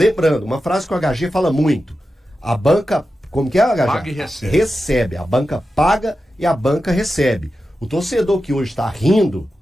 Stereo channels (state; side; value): normal; both; correlation 0.91